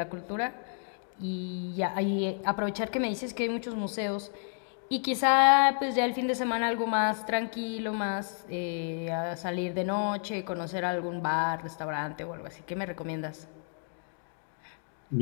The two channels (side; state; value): right; silent; 57 dB below the other